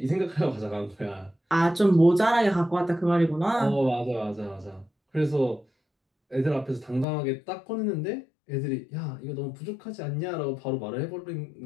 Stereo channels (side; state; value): right; drops out; at 7.1 s